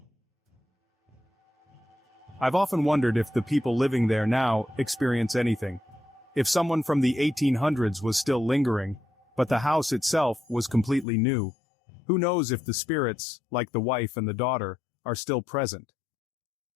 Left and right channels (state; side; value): drops out; right; at 11.1 s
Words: I've often wondered if the people living there now experience anything. If someone from the 1800s was still lingering, but the house itself was completely new. Who knows if the spirits, like the wife and the daughter, are still present.